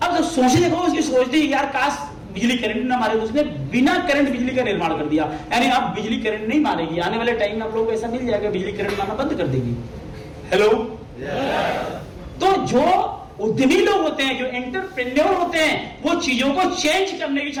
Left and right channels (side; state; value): both; identical; correlation 1.00